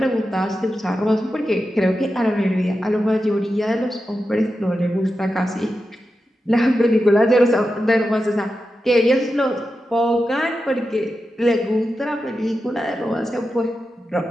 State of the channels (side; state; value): both; normal; correlation 0.90